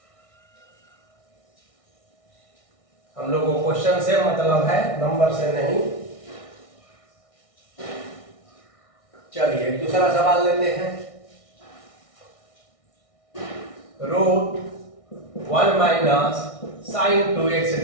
हम लोगों को क्वेश्चन से मतलब है, नंबर से नहीं। चलिए दूसरा सवाल लेते हैं, root 1 minus sine 2x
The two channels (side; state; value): right; late; 1.6 ms